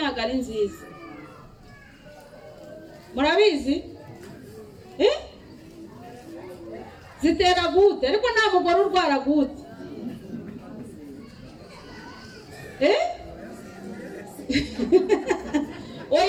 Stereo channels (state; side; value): identical; both; correlation 1.00